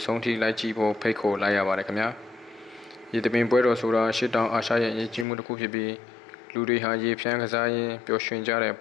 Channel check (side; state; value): right; drops out; at 5.2 s